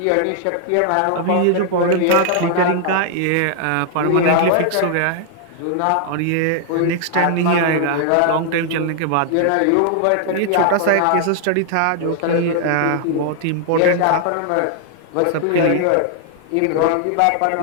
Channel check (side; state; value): both; different; correlation 0.00